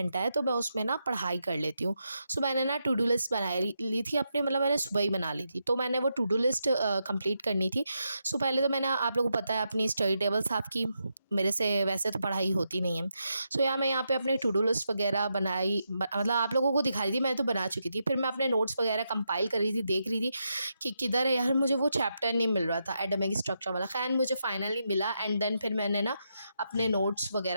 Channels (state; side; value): inverted; both; correlation -0.84